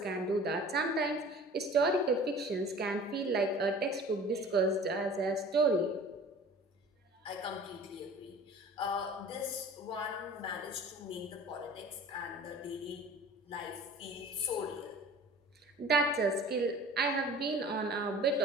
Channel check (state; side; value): normal; both; correlation 0.44